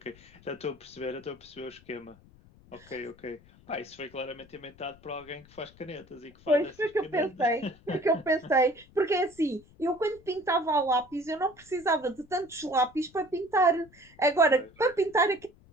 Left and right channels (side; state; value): left; noise; rumble, 26 dB below the sound